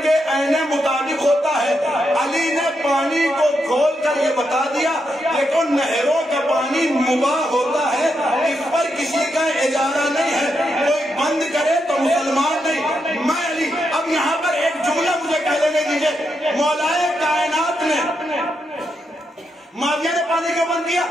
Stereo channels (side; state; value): both; normal; correlation 0.82